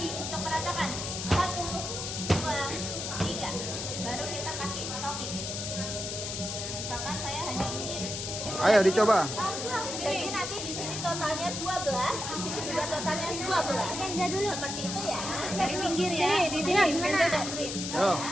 untuk meratakan. 1, 2, 3. Baru kita kasih topping. Misalkan saya hanya ingin. Ayo dicoba. Jadi nanti di sini totalnya 12, di sini juga totalnya 12. Kenza dulu. Seperti itu ya. Dari pinggir ya. Di sini. Kenza dan Green. Yo.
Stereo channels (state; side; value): noise; left; hiss, 5 dB below the sound